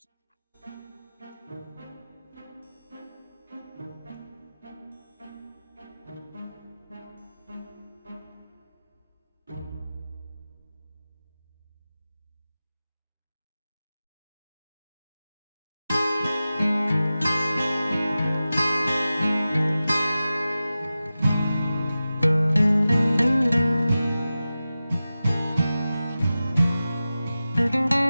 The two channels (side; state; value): both; inverted; correlation -0.95